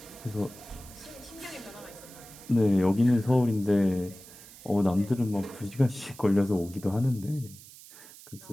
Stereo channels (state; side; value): noise; right; hiss, 19 dB below the sound